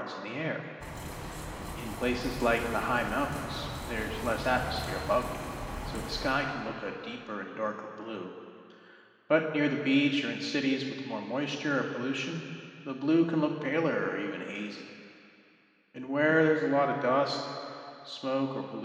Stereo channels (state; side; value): identical; both; correlation 1.00